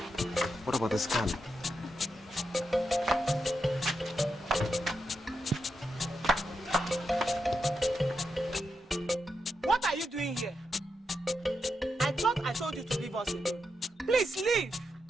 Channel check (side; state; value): both; normal; correlation 0.85